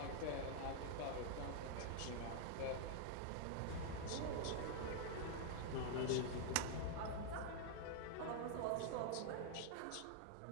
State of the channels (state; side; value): different; both; correlation 0.00